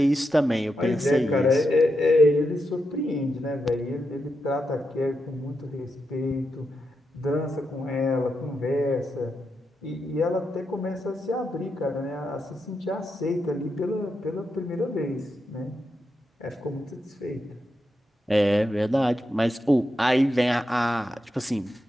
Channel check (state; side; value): normal; both; correlation 0.85